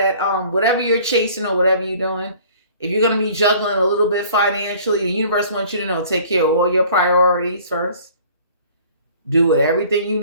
whatever you're chasing or whatever you're doing, if you're going to be juggling a little bit financially, the universe wants you to know, take care of all your priorities first. Do everything you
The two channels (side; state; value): both; inverted; correlation -0.51